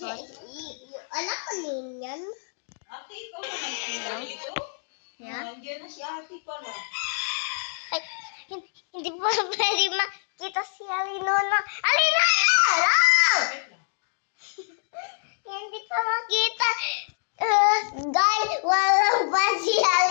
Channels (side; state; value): right; silent; digital silence